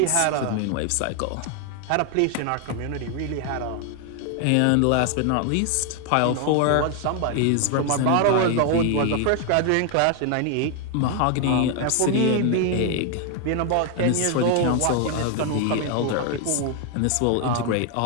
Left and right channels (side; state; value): both; different; correlation 0.01